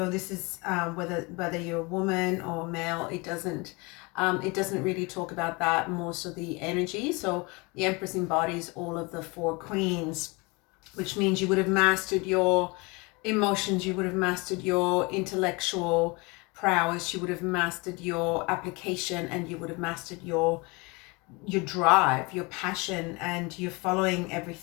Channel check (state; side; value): quieter; right; 27.2 dB